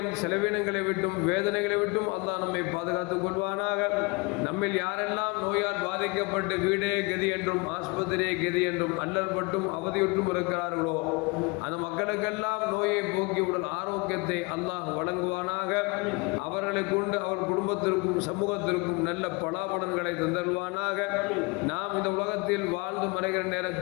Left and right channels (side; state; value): right; quieter; 27.1 dB